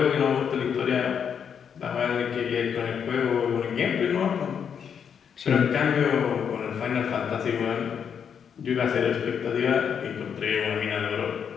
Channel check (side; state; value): right; quieter; 7.5 dB